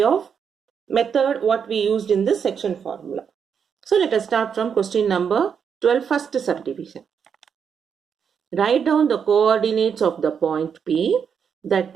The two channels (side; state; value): left; quieter; 7.1 dB